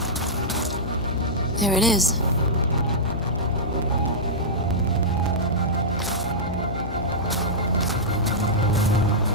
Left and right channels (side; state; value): left; noise; hum, 7 dB below the sound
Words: There it is.